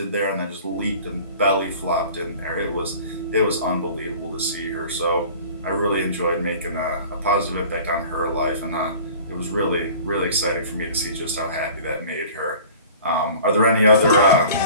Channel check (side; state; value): both; inverted; correlation -0.44